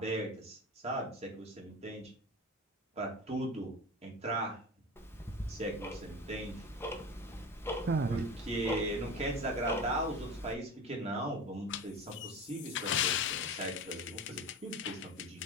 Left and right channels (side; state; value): both; normal; correlation 0.30